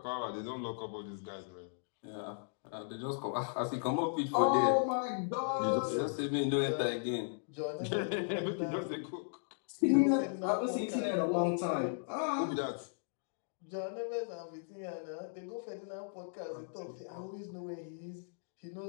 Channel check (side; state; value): right; silent; digital silence